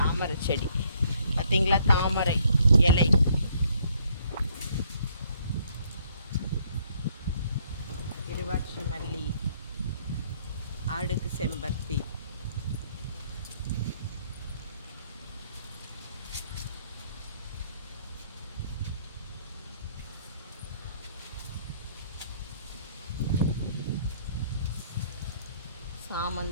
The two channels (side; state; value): both; inverted; correlation -0.66